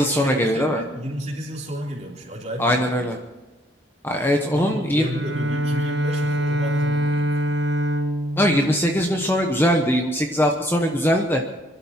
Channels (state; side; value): normal; both; correlation 0.66